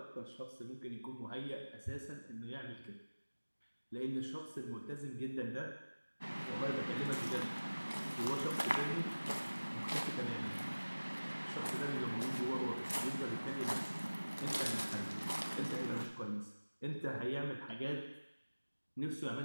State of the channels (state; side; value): inverted; both; correlation -1.00